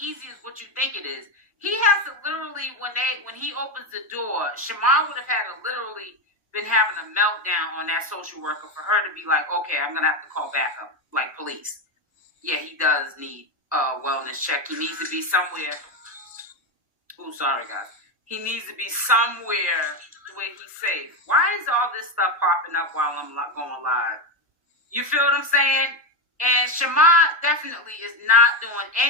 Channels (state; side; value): normal; both; correlation 0.11